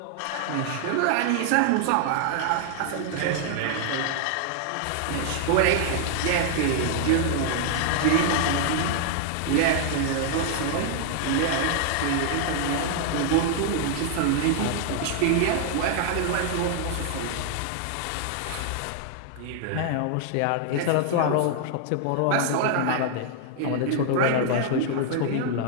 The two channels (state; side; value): different; both; correlation 0.00